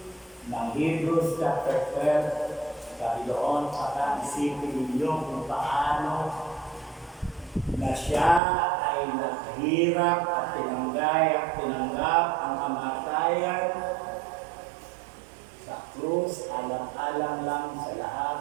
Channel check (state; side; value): drops out; left; at 8.4 s